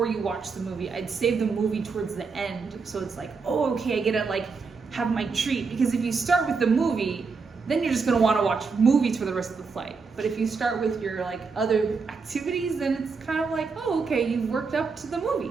you watch the movie. I'd save the movie towards the end. So it's like, oh, okay, I get to like have my treat. Because if you start with the movie, then you're just gonna wanna watch movies for the rest of the flight. But if you start with your like other activities, then it's kind of like, oh, okay, you've worked up to the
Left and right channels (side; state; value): left; quieter; 4.8 dB